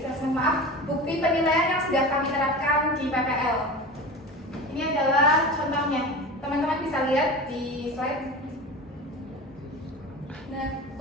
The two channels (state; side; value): normal; both; correlation 0.31